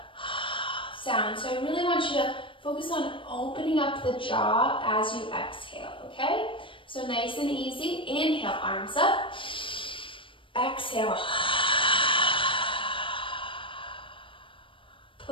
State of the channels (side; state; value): right; late; 0.25 ms